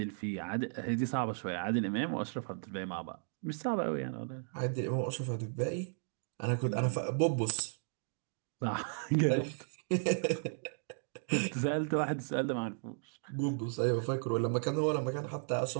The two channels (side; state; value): left; silent; digital silence